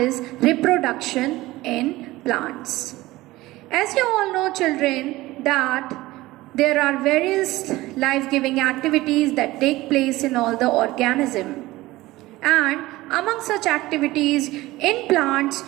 reproduction in plants. As you all know, children, that there are various life-giving activities that take place in all the organism. And among such activities in plants,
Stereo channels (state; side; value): quieter; left; 18.4 dB